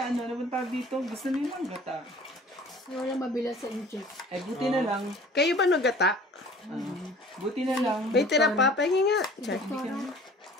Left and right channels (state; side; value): normal; both; correlation 0.48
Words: naman tawag dito, gusto niyo mang gata. Wala mabilang sa incheck. Ay, buti na lang. Kayo ba nagata? Buti na lang. May tira pa. Pahingi nga. Char. Doktora.